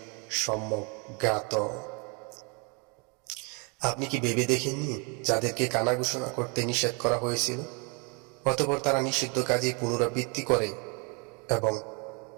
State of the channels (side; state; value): left; quieter; 33.5 dB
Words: সম্যক জ্ঞাত। আপনি কি ভেবে দেখেননি যাদেরকে কানা ঘোষণা করতে নিষেধ করা হয়েছিল, অতঃপর তারা নিষিদ্ধ কাজে পুনরাবৃত্তি করে এবং